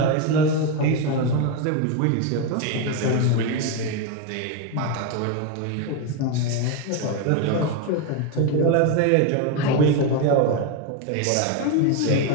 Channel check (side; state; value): both; different; correlation 0.03